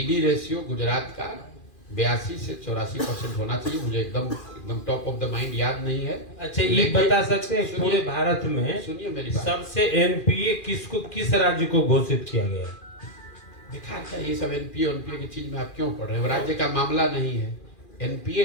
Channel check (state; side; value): late; right; 2.4 ms